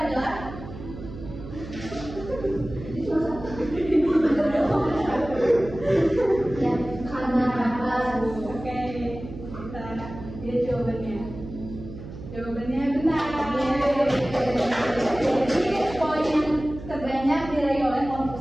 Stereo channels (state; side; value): noise; right; hum, 12 dB below the sound